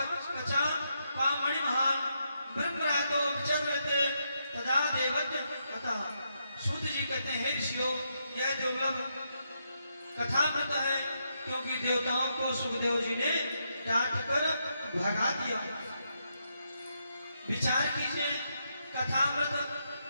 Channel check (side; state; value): both; inverted; correlation -0.81